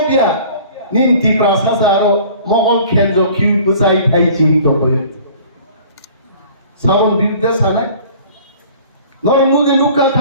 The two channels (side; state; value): both; inverted; correlation -0.49